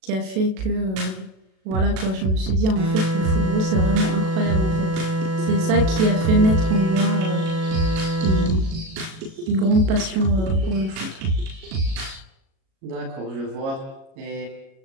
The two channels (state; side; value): late; left; 37 ms